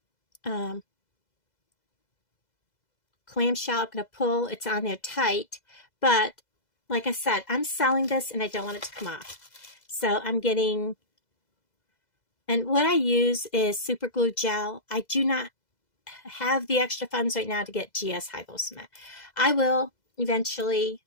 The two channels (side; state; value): right; late; 2.0 ms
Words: clamshell. I'm going to pull. It's on there tight. But like I said, I'm selling this and I don't want it to come off. So I'm getting, and what I use is super glue gel. I do not have the extra funds right now to get GS Hypo Cement. I will eventually,